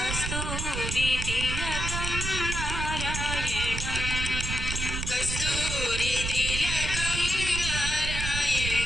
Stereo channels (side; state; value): right; noise; rumble, 3 dB below the sound